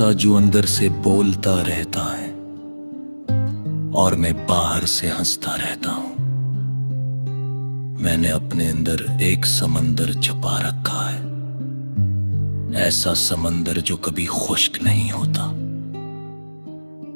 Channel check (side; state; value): both; inverted; correlation -1.00